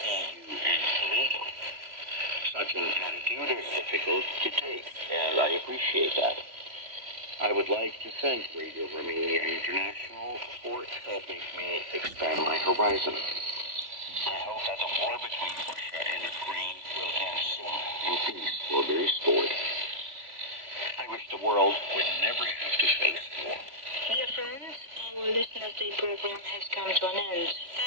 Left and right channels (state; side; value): late; left; 3.5 ms